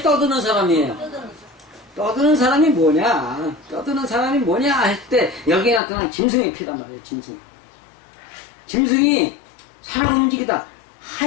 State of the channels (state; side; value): drops out; right; at 5.8 s